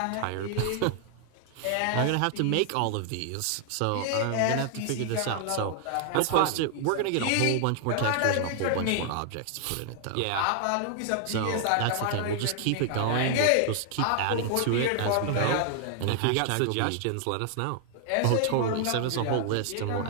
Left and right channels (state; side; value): different; both; correlation 0.00